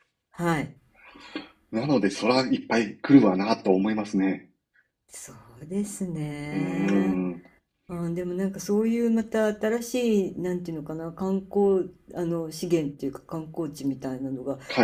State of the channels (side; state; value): both; identical; correlation 1.00